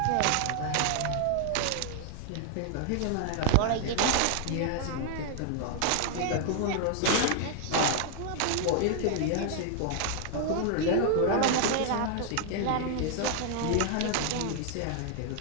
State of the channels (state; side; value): different; both; correlation 0.00